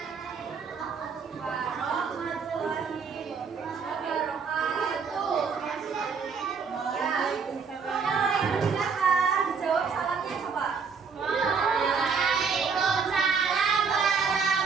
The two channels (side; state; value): left; quieter; 5.7 dB